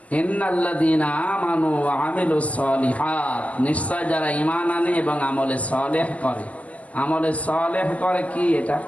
ইন্নাল্লাযীনা আমানু ওয়া আমিলুস সলিহাত, নিশ্চয় যারা ঈমান আনে এবং আমলে সালেহ করে। আমলে সালেহ করে কি? এটা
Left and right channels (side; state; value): right; late; 0.071 ms